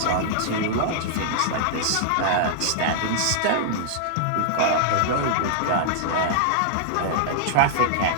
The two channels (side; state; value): both; different; correlation -0.01